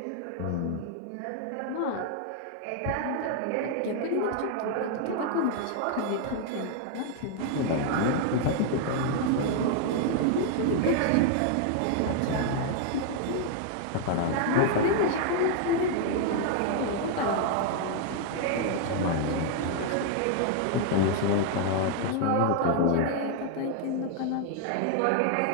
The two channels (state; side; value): different; both; correlation 0.00